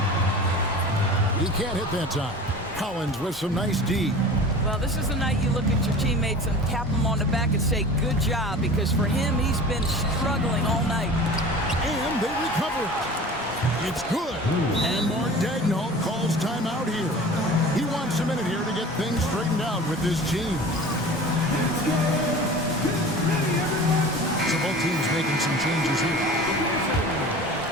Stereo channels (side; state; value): both; normal; correlation 0.38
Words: He can't hit that time. Collins with some nice D. Well, this is the night you look at your teammates and tap them on the back and say, good job, because for him, he's been struggling all night. And they recover. It's good. And Mark Daigneault calls timeout here. He wants a minute here to get things straightened out with this team. So both teams making some changes here.